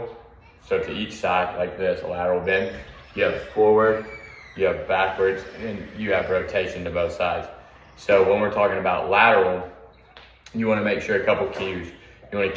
so to each side like this, a lateral bend. You have forward, you have backwards, and you have rotation to both sides. So when we're talking about lateral, you want to make sure a couple cues. You want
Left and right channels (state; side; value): identical; both; correlation 1.00